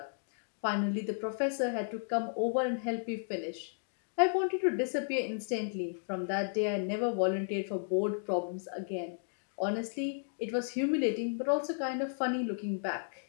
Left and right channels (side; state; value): right; silent; digital silence